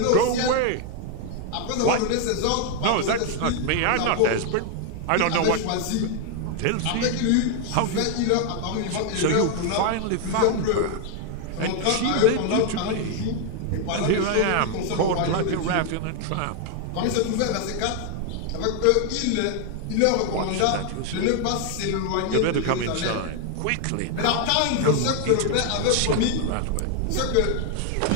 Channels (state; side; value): different; both; correlation 0.00